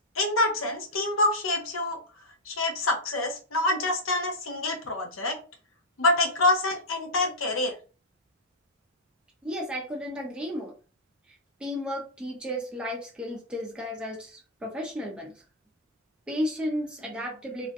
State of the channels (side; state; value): both; normal; correlation -0.07